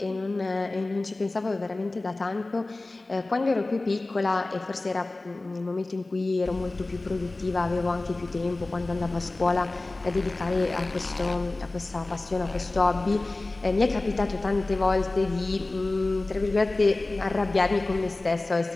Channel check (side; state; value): right; quieter; 3.0 dB